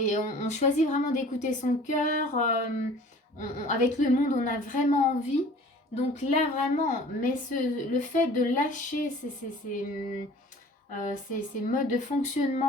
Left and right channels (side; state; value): both; normal; correlation 0.47